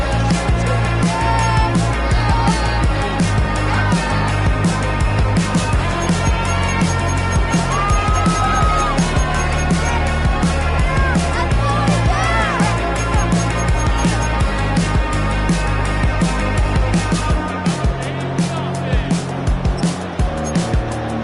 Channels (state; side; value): identical; both; correlation 1.00